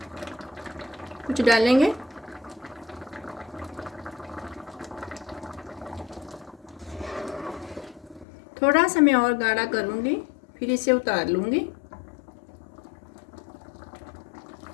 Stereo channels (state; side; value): drops out; right; at 8.2 s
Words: कुछ डालेंगे। थोड़ा सा मैं और गाढ़ा करूँगी, फिर इसे उतार लूँगी।